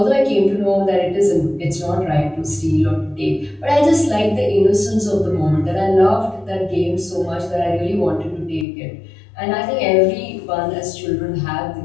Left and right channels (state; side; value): drops out; right; at 8.7 s